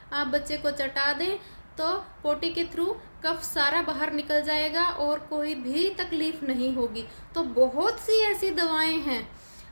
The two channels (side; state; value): both; inverted; correlation -1.00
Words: आप बच्चे को चटा दें तो पोटी के थ्रू कफ सारा बाहर निकल जाएगा और कोई भी तकलीफ नहीं होगी। तो बहुत सी ऐसी दवाएं हैं,